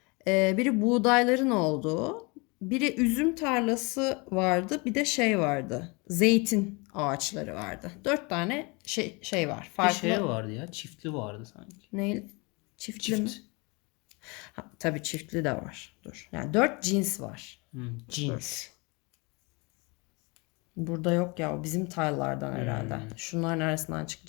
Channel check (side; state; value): right; quieter; 28.6 dB